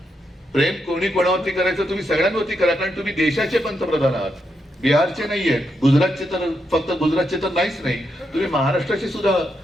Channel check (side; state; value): both; normal; correlation 0.82